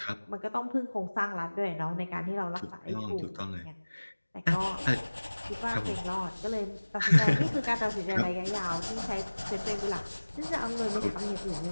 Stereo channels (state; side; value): inverted; both; correlation -1.00